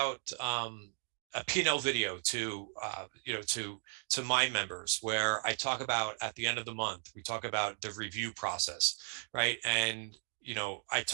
a P&L video to to my members, where I talk about at the end of the month, we talk about the review process, right? And I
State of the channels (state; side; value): silent; left; 54 dB below the other